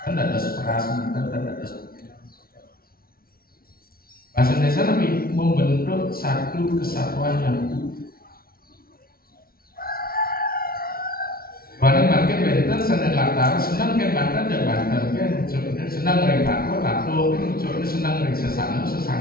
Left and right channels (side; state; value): right; late; 0.44 ms